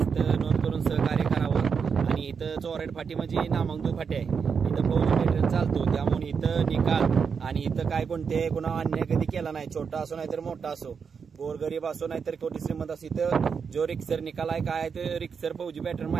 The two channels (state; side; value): quieter; left; 6.1 dB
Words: नोंद करून सहकार्य करावं. आणि इथं चोराड फाटी म्हणजे नामांकित फाटी आहे. इथं फौजी पेट्रोल चालतो, त्यामुळे इथं निकाल आणि इथं काय कोणते कुणा अन्याय कधी केला नाही. छोटा असो नाहीतर मोठा असो, गोरगरीब असो नाहीतर कोटी श्रीमंत असो, इथं जो रिक्सर निकाल आहे काय ते रिक्सर फौजी पॅटर्न